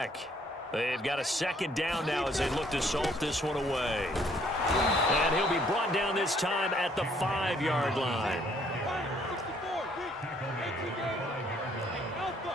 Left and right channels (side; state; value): both; normal; correlation 0.64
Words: They've got a 2nd down now as they look to salt this one away. And he'll be brought down this time at the 5-yard line.